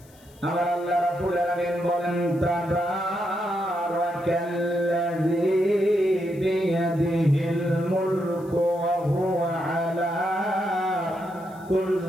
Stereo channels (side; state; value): left; noise; hiss, 28 dB below the sound